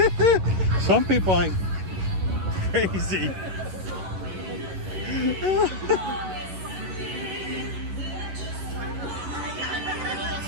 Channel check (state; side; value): late; left; 11 ms